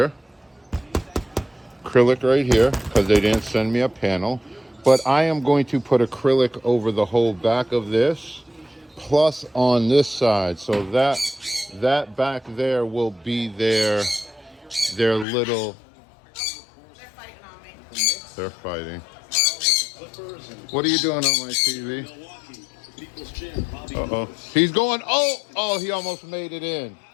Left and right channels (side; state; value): right; drops out; at 15.2 s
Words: Acrylic right here, because they didn't send me a panel. But I am going to put acrylic over the whole back of this, plus on this side. So that back there will be their little... They're fighting. What are you doing on my TV? Uh-oh. He's going, oh, he almost made it in.